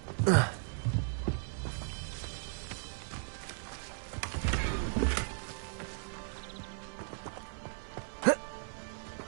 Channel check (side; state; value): left; silent; 54 dB below the other